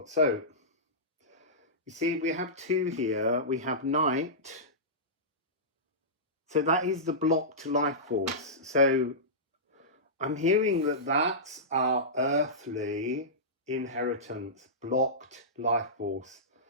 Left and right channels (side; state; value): both; normal; correlation -0.16